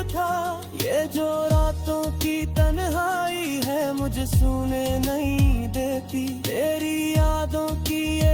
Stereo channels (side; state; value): both; identical; correlation 1.00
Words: था। ये जो रातों की तन्हाई है मुझे सोने नहीं देती। तेरी यादों की